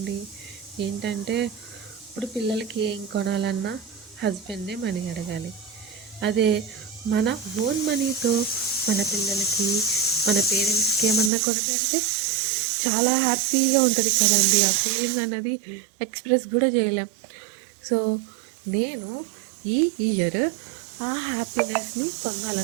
ఏంటంటే ఇప్పుడు పిల్లలకి ఏం కొనాలన్నా హస్బెండే మనీ అడగాలి. అదే మన ఓన్ మనీతో మన పిల్లలకి, మన పేరెంట్స్కి ఏమన్నా కొనిపెడితే చాలా హ్యాపీగా ఉంటుంది కదండి. ఆ ఫీలింగ్ అన్నది ఎక్స్ప్రెస్ కూడా చేయలేం. సో నేను ఈ ఇయర్ ఆ హ్యాపీనెస్ని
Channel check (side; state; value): left; drops out; at 11.3 s